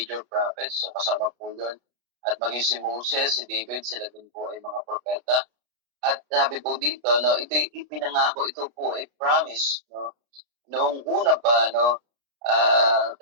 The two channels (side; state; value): left; late; 33 ms